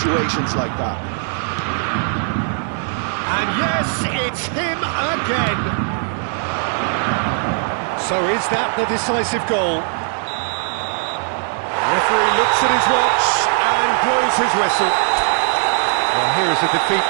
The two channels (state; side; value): silent; left; 59 dB below the other